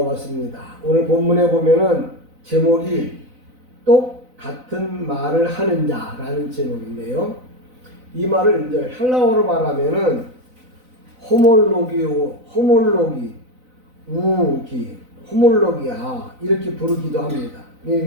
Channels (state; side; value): late; left; 4.0 ms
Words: 오늘 본문에 보면은 제목이 똑같은 말을 하는 자라는 제목인데요. 이 말을 이제 헬라어로 말하면은 호몰로기아 이렇게 부르기도 합니다.